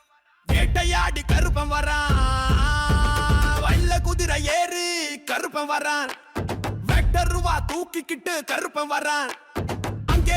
வேட்டையாடி கருப்பன் வரான், வல்ல குதிரை ஏறி கருப்பன் வரான், வெக்டர் ரூபா தூக்கிக்கிட்டு கருப்பன் வரான்,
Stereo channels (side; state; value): both; identical; correlation 1.00